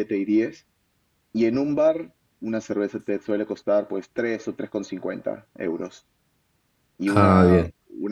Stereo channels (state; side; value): identical; both; correlation 1.00